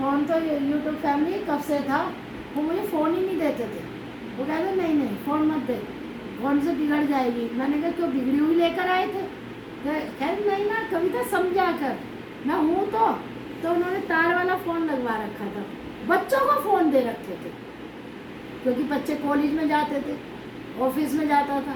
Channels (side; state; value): both; identical; correlation 1.00